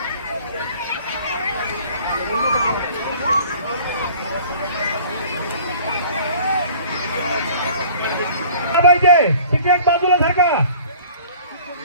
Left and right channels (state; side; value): inverted; both; correlation -0.48